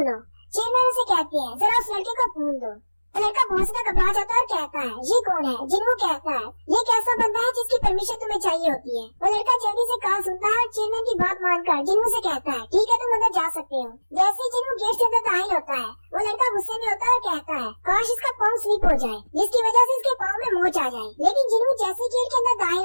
चेयरमैन उसे कहते हैं, जरा उस लड़के को फोन दो। लड़का बहुत ज्यादा घबरा जाता है और कहता है, ये कौन है? जिनू कहता है, ये एक ऐसा बंदा है जिसकी परमिशन तुम्हें चाहिए होती है। वो लड़का जल्दी से कॉल सुनता है और चेयरमैन की बात मानकर जिनू से कहता है, ठीक है, तुम अंदर जा सकते हो। जैसे ही जिनू गेट से अंदर दाखिल होता है, वो लड़का गुस्से में होता है और कहता है, काश इसका पाँव स्लिप हो जाए, जिसकी वजह से इसके पाँव में मोच आ जाए। लेकिन जिनू जैसे गेट के अंदर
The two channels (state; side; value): inverted; both; correlation -1.00